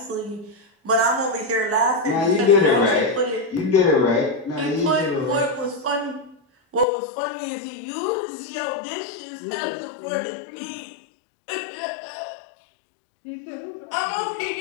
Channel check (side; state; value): right; drops out; at 6.9 s